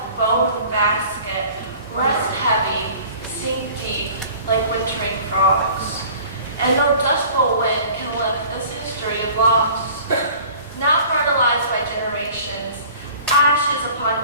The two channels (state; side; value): inverted; both; correlation -0.47